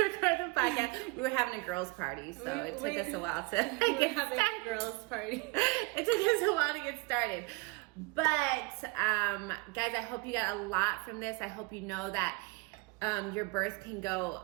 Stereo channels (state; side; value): quieter; left; 26.7 dB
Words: the podcast. We were having a girls' party, so it took us a while to get started. A girls' party. It took us a while to get started. But guys, I hope you got a lot from this. I hope you know that your birth can